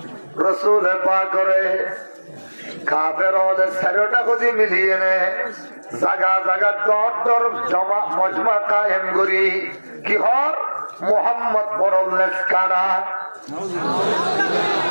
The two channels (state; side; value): inverted; both; correlation -1.00